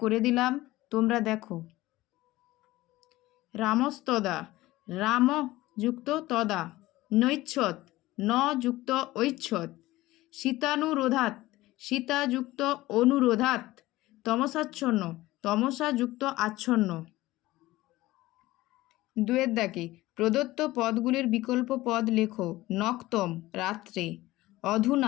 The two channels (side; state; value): right; quieter; 17.8 dB